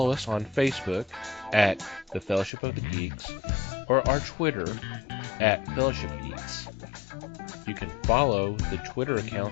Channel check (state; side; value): drops out; right; at 2.5 s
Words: us on Facebook at The Fellowship of the Geeks or our Twitter at Fellowship Geeks. You can follow the Twitter